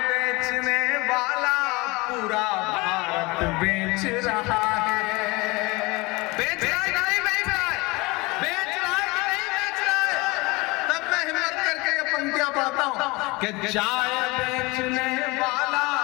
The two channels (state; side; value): quieter; right; 24.3 dB